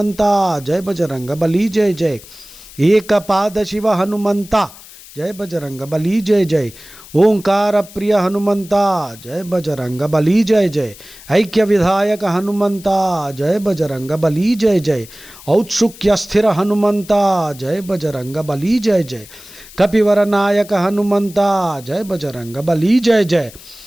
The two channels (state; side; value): noise; left; hiss, 19 dB below the sound